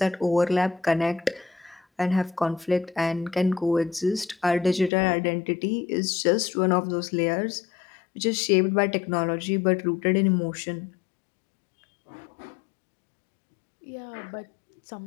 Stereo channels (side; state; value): right; drops out; at 4.9 s